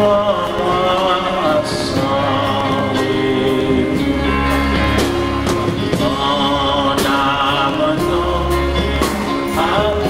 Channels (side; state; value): both; identical; correlation 1.00